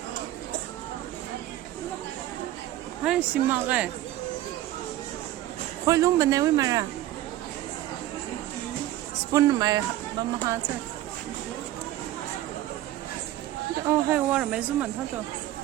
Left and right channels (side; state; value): left; quieter; 14.3 dB